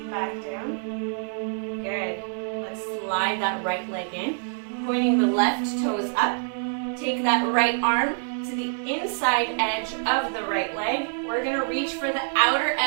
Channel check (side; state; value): left; silent; 60 dB below the other